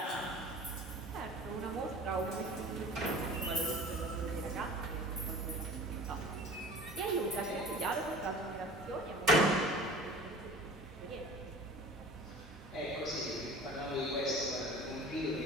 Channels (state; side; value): normal; both; correlation 0.41